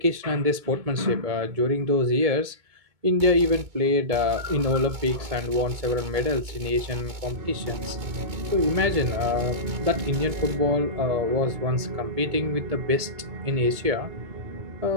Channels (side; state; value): left; late; 2.2 ms